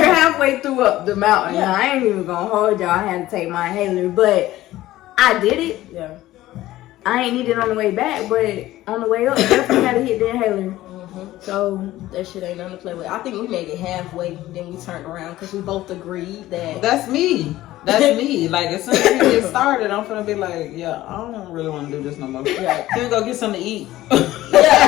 halfway through up the mountain. Yeah. I ain't even gonna hold y'all. I had to take my inhaler, but I did it. Yeah. I ain't need it on the way back, but on the way up, definitely had to hit the inhaler. Mm-hmm. So that shit ain't nothing to play with. I think we made it halfway, then we turned around because we both agreed that. That's me. That's me. Like, as soon as we get started, I'm gonna be like, yeah, I don't really want to do this no more. Yeah, can we go get something to eat?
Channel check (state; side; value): quieter; right; 15.7 dB